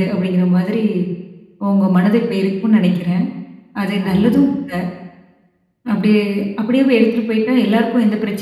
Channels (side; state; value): both; identical; correlation 1.00